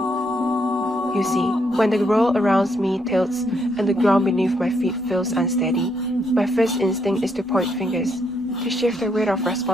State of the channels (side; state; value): both; normal; correlation 0.75